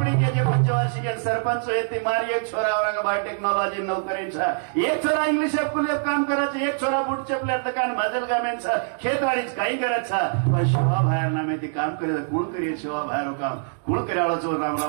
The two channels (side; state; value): left; silent; digital silence